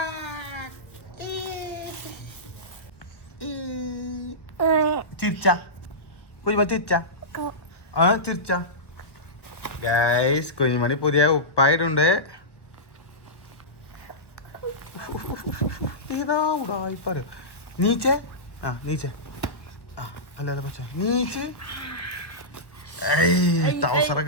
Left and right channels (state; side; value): late; right; 1.1 ms